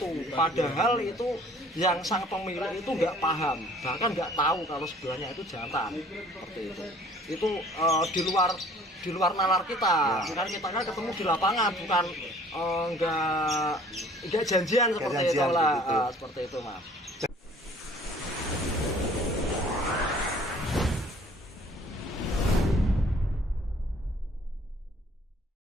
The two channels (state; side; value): normal; both; correlation 0.53